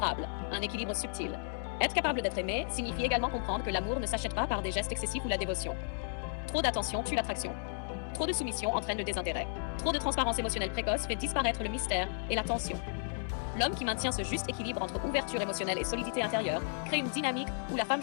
un équilibre subtil. Être capable d'être aimé signifie également comprendre que l'amour ne s'achète pas par des gestes excessifs ou la dévotion. Trop d'attention tue l'attraction. Trop de soumission entraîne le désintérêt. Trop de transparence émotionnelle précoce fait disparaître le mystère et la tension. L'homme qui maintient ce juste équilibre entre ouverture émotionnelle et solidité intérieure crée une dynamique où la femme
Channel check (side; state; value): right; silent; digital silence